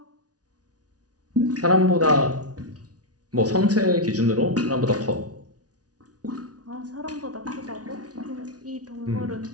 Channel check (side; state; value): left; late; 0.68 ms